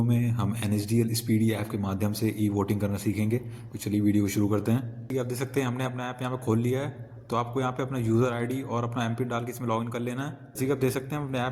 में हम NSDL स्पीडी ऐप के माध्यम से ई वोटिंग करना सीखेंगे। तो चलिए वीडियो को शुरू करते हैं। ये आप देख सकते हैं हमने अपना ऐप यहाँ पे खोल लिया है। तो आपको यहाँ पे अपना यूज़र आईडी और अपना एमपिन डाल के इसमें लॉगिन कर लेना है। जैसे कि आप देख सकते हैं हम अपने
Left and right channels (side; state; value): both; identical; correlation 1.00